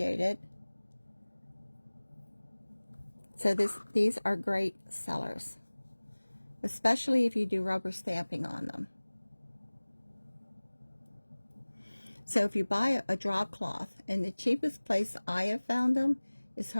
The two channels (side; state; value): both; inverted; correlation -1.00